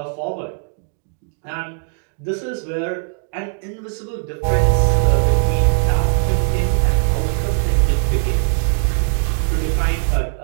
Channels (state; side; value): silent; left; digital silence